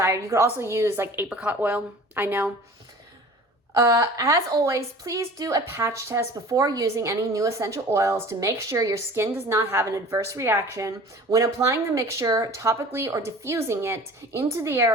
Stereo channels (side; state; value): both; normal; correlation 0.43